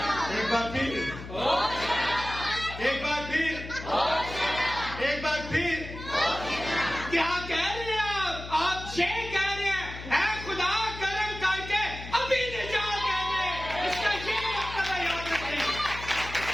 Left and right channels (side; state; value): left; noise; hum, 11 dB below the sound